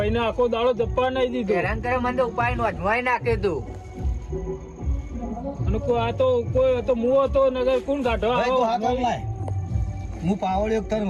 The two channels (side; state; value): both; identical; correlation 1.00